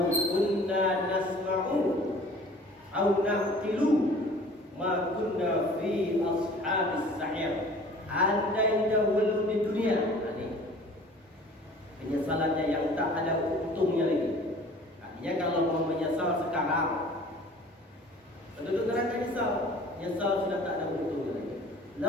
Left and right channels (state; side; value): normal; both; correlation 0.48